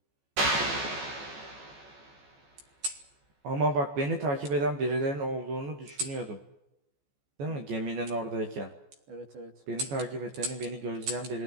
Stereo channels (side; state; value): left; late; 14 ms